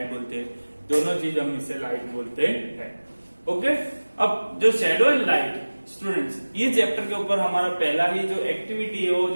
बोलते हैं। दोनों चीज हम इसे लाइट बोलते हैं। ओके, अब जो शेडो एंड लाइट स्टूडेंट्स, ये चैप्टर के ऊपर हमारा पहला ही जो एक्टिविटी है, वो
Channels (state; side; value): inverted; both; correlation -1.00